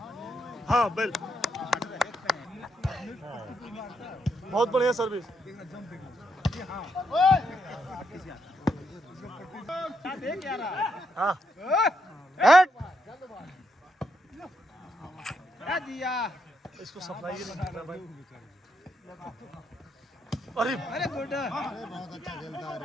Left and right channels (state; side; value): normal; both; correlation 0.79